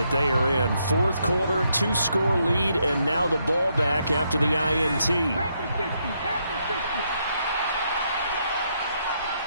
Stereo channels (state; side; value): inverted; both; correlation -0.77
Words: they are in. 4th quarter, 2-score lead, and now the ball back after the INT.